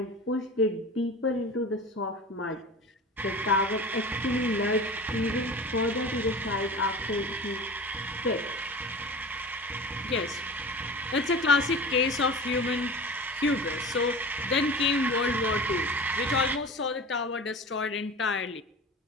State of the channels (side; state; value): both; normal; correlation 0.35